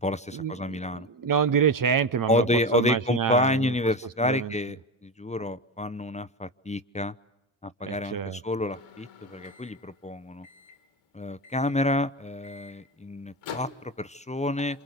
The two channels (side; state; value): both; normal; correlation 0.21